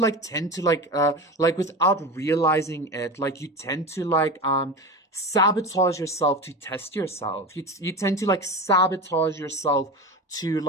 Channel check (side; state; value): both; normal; correlation 0.26